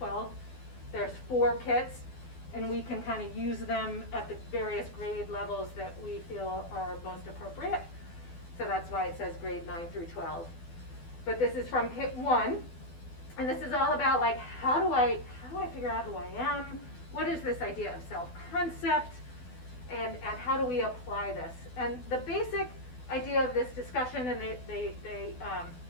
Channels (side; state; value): right; late; 12 ms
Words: There's 4 kits, and we can kind of use them at the various grade levels that we feel are most appropriate. So that's why it says grade 9 through 12. But this is from kit 1, and this is all about like how do I figure out who I am? What is this idea of self-concept? And how do we apply this? And the basic idea of this discussion, and